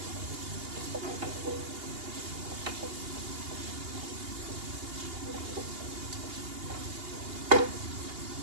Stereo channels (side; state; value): left; late; 2.8 ms